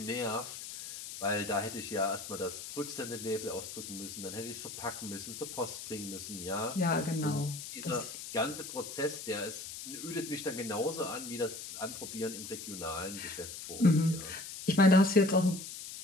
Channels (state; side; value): noise; left; hiss, 9 dB below the sound